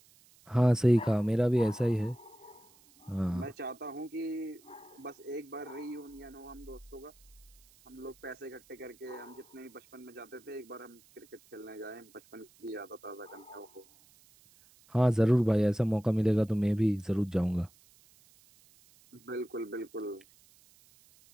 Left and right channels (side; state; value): right; noise; hiss, 28 dB below the sound